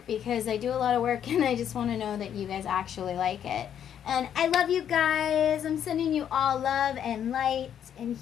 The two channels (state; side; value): quieter; right; 9.3 dB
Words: because I do a lot of work and I just want to know that you guys actually like it. And I love you guys. I'm sending you all love and light and